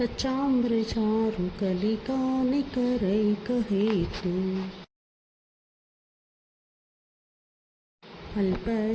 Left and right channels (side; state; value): both; identical; correlation 1.00